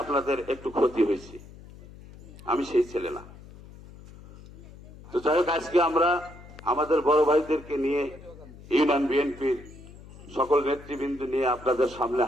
আপনাদের একটু ক্ষতি হয়েছে। আমি সেই ছেলে না। তো যাই হোক, আজকে আমরা আমাদের বড় ভাইদেরকে নিয়ে ইউনিয়ন বিএনপির সকল নেতৃবৃন্দ নিয়ে আপনাদের সামনে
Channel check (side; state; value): left; noise; hum, 19 dB below the sound